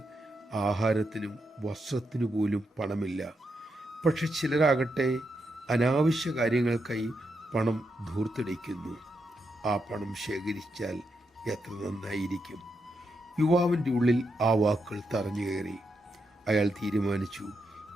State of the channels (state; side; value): normal; both; correlation 0.83